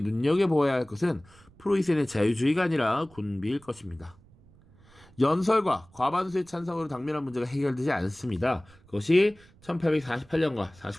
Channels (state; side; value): noise; right; rumble, 27 dB below the sound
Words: 할 것은 프로이센의 자유주의가 아니라 군비일 것입니다. 연설과 과반수의 찬성으로 당면한 문제가 해결되지 않습니다. 그것이 1848년과